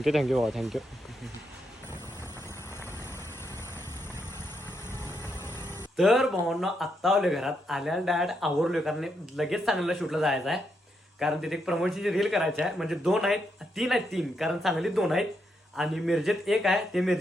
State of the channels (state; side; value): normal; both; correlation 0.80